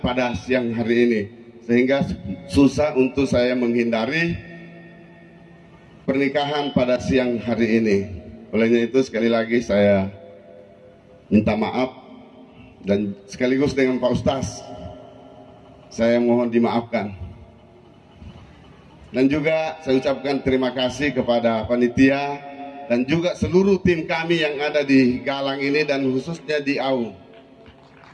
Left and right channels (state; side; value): identical; both; correlation 1.00